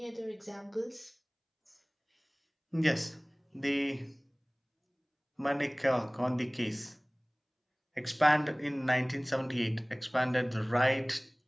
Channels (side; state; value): both; identical; correlation 1.00